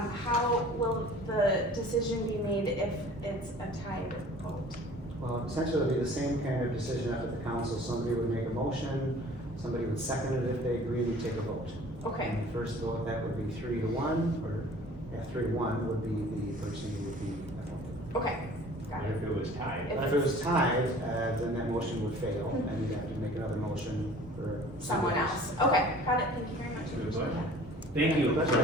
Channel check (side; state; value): both; normal; correlation 0.48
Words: will the decision be made if it's a tied vote? Well, essentially it'll be the same kind of decision up at the council. Somebody would make a motion, somebody would second it. If they agree, we take a vote. Okay, And the first vote, that would be 3-1, or 3-1 would be the person who would be appointed. okay, got But it. if it was tied, But if it was tied, then that motion would fail, and you'd have to make another motion for Someone else. Okay, got it. Thank you very much. Good Appreciate question. that. thank you.